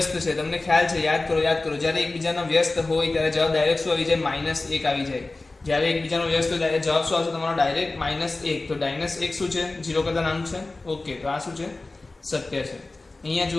છે. તમને ખ્યાલ છે, યાદ કરો. જ્યારે એકબીજાનો વ્યસ્ત હોય ત્યારે જવાબ ડાયરેક્ટ શું આવી જાય, -1 આવી જાય. જ્યારે એકબીજાનો વ્યસ્ત હોય જવાબ શું આવશે તમારો, ડાયરેક્ટ -1. તો -1 શું છે, 0 કરતાં નાનું છે. ઓકે, તો આ શું છે, સત્ય છે. અહીંયા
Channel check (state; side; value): quieter; right; 3.2 dB